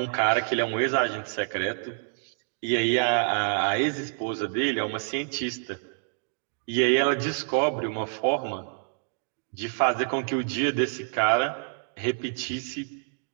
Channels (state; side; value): silent; left; digital silence